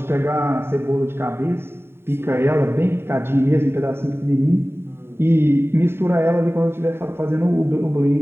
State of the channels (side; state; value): left; late; 0.11 ms